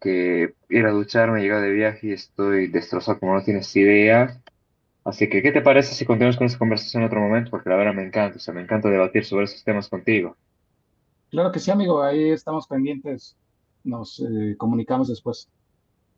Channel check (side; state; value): both; identical; correlation 1.00